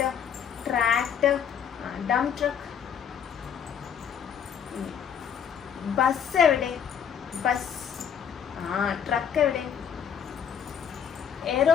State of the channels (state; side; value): quieter; right; 7.9 dB